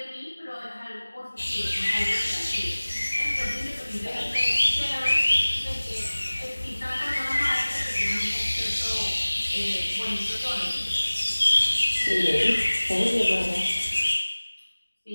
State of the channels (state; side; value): inverted; both; correlation -1.00